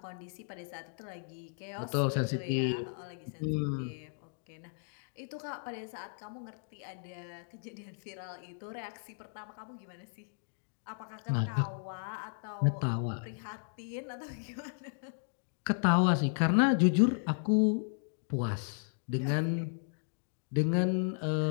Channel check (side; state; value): right; silent; digital silence